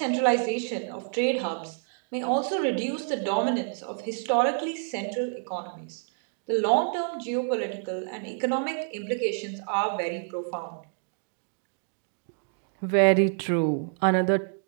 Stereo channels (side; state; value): left; silent; 59 dB below the other